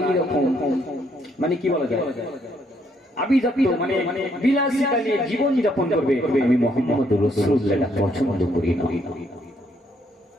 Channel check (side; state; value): both; normal; correlation 0.71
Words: মানে কি বলা যায় আভিজাত্য মানে বিলাসিতা নিয়ে জীবন যাপন করবে, আমি মুহাম্মদুর রাসূলুল্লাহ পছন্দ করি না।